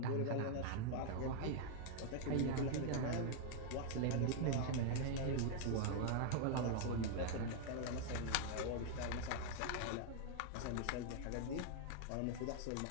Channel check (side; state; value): both; different; correlation 0.00